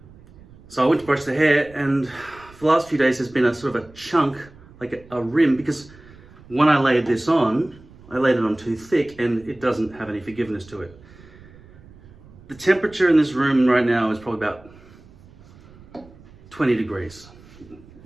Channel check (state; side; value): noise; right; rumble, 23 dB below the sound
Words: So I went to brush the hair, and for the last few days there's been a sort of a chunk, like a rim, because when I laid this on, I laid it on too thick and it doesn't have any forgiveness to it. The temperature in this room right now is probably about 20 degrees,